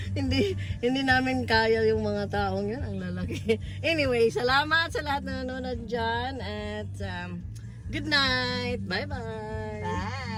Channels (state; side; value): identical; both; correlation 1.00